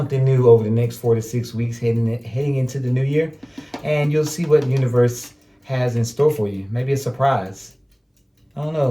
new over the next 4 to 6 weeks heading into the new year, and you'll see what the universe has in store for you. Maybe a surprise. I don't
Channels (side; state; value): both; identical; correlation 1.00